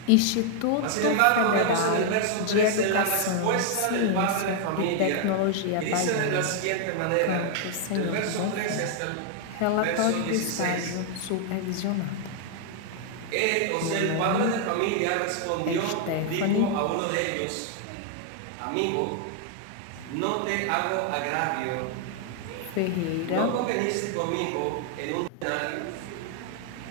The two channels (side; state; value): both; different; correlation 0.00